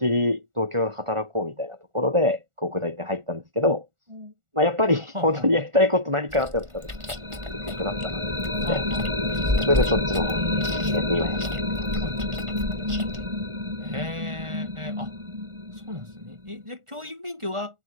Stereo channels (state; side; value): late; left; 1.4 ms